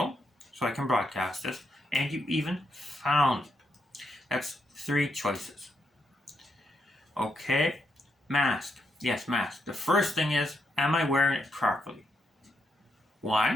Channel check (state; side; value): normal; both; correlation 0.80